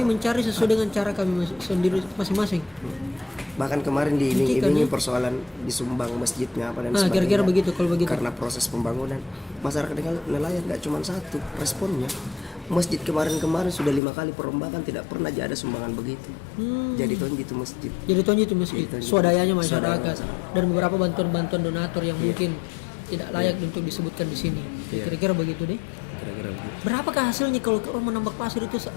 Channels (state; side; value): drops out; right; at 14.0 s